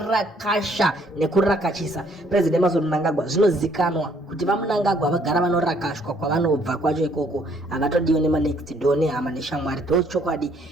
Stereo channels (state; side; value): normal; both; correlation 0.65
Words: nekurakachisa President Emmerson Mnangagwa. Zvinozikanwa kuti vaMnangagwa vagara vanorakashwa kwavanobva kwacho ikoko, havatodiwe nema-next door nehama neshamwari. Ndochokwadi